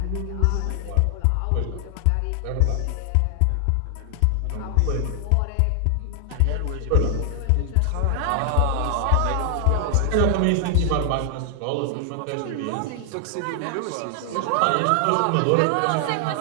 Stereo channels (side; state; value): both; different; correlation 0.00